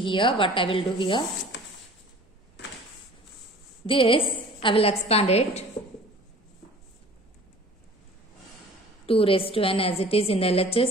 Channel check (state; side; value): normal; both; correlation 0.46